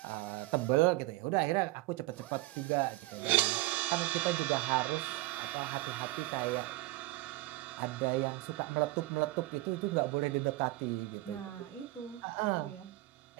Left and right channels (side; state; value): left; quieter; 19.6 dB